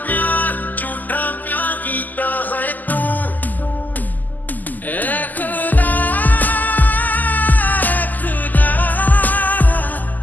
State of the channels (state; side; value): late; right; 0.083 ms